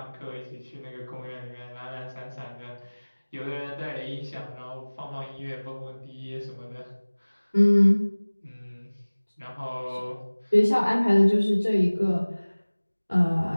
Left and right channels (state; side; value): inverted; both; correlation -1.00